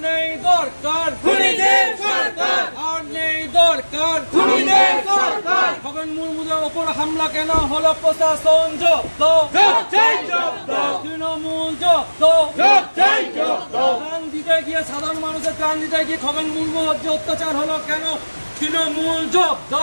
নেই দরকার খুনিদের সরকার আর নেই দরকার খুনিদের সরকার খগেন মুর্মুদের ওপর হামলা কেন হলো প্রশাসন জব্দ তৃণমূল জব্দ প্রাণ দিতে গিয়ে সাধারণ মানুষের প্রাণ দিতে গিয়ে খগেন মুর্মুর যে অত্যাচার হলো কেন তৃণমূল জব্দ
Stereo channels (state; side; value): inverted; both; correlation -1.00